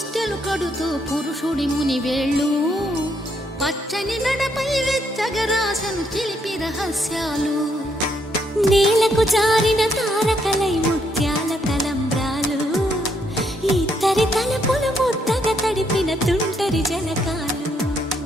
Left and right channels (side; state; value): both; normal; correlation 0.74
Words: కడుతూ పురుషుడి ముని వేళ్ళు పచ్చని నడపై వెచ్చగరాసను చిలిపి రహస్యాలు నేలకు జారిన తారకలై ముత్యాల తలంబ్రాలు ఇద్దరి తలపులు ముద్దగా తడిపిన తుంటరి జలకాలు